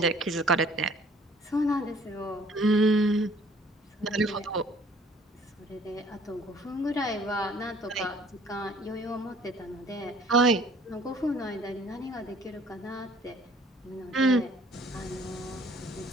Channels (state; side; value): normal; both; correlation 0.55